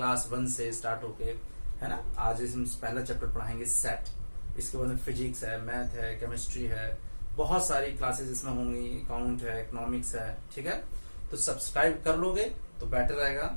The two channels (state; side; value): inverted; both; correlation -1.00